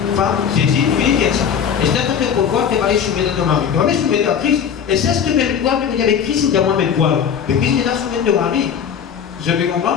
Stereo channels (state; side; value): quieter; right; 7.7 dB